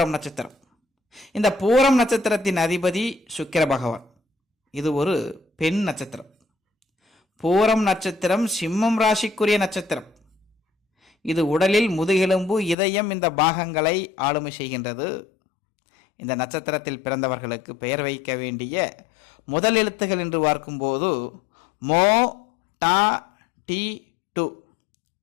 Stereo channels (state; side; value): drops out; right; at 12.8 s